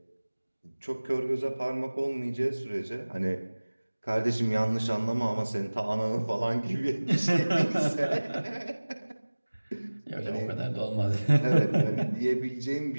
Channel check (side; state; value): both; inverted; correlation -1.00